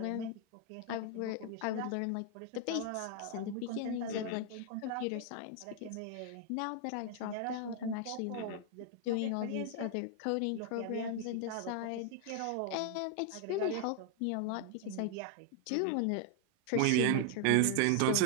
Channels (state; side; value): different; both; correlation 0.00